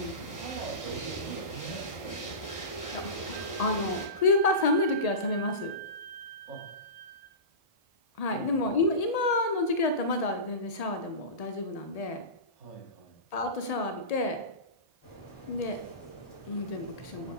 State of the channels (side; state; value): right; late; 1.8 ms